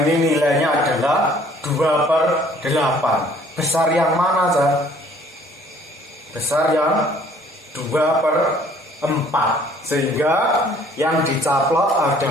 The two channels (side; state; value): both; normal; correlation 0.57